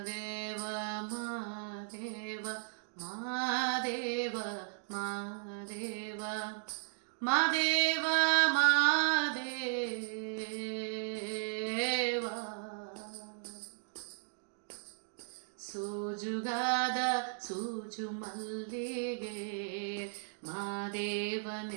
ಮಾದೇವ ಮಾದೇವ ಮಾದೇವ ಮಾದೇವ ಮಾದೇವ ಸೋಜುಗಾದ ಸೂಜು ಮಲ್ಲಿಗೆ ಮಾದೇವ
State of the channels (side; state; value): left; silent; digital silence